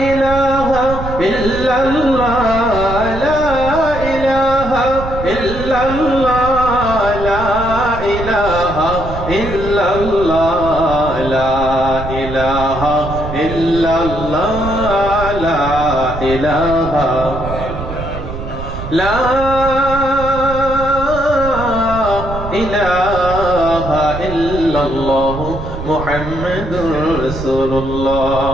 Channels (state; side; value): noise; right; rumble, 8 dB below the sound